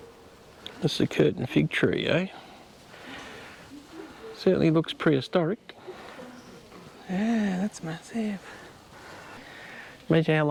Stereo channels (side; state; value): both; identical; correlation 1.00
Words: That's the curtain fig tree, eh? Certainly looks prehistoric. Yeah, that's massive. Imagine how